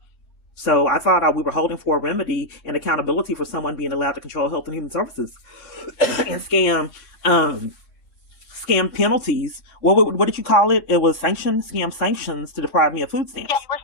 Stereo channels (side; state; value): right; late; 3.6 ms